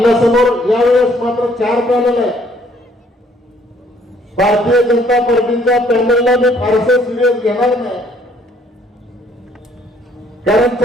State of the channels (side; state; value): both; normal; correlation 0.63